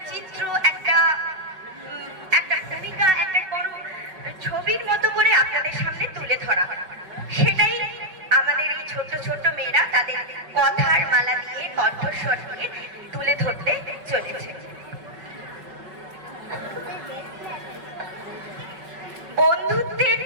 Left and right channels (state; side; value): late; left; 5.3 ms